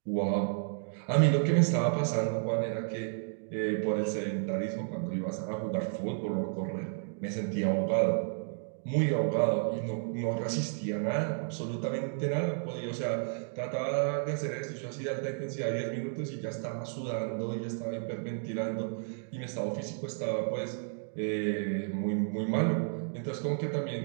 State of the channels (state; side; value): silent; left; digital silence